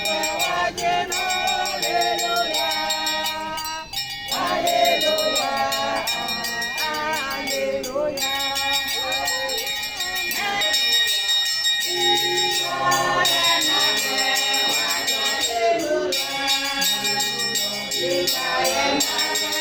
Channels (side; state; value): both; identical; correlation 1.00